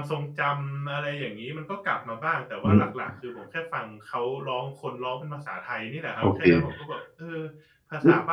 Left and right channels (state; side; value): identical; both; correlation 1.00